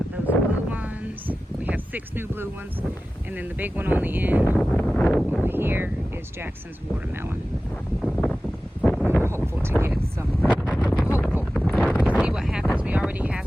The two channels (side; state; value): both; normal; correlation 0.95